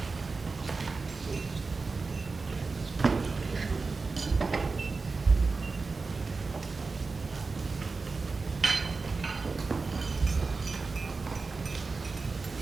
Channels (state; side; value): quieter; left; 4.1 dB